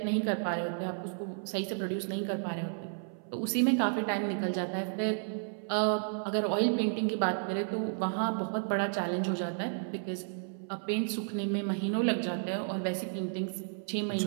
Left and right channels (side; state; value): left; silent; 56 dB below the other